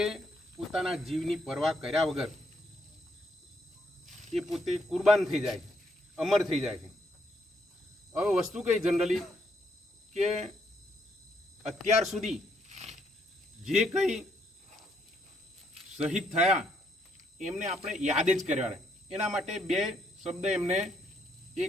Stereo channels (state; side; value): normal; both; correlation 0.73